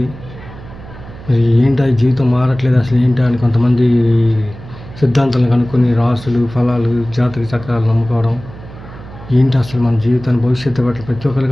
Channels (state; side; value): noise; right; hum, 16 dB below the sound